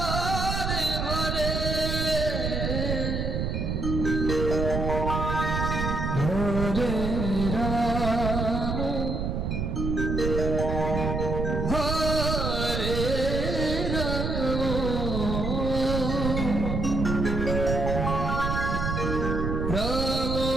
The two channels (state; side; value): noise; right; rumble, 1 dB below the sound